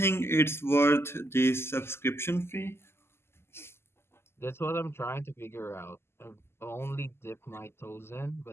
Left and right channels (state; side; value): late; right; 0.12 ms